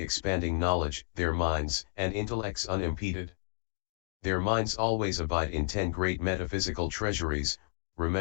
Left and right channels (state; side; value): silent; right; digital silence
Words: expanding knowledge, their minds and intellects unimpeded. Their minds always abide in 10 great metaphysical treasuries,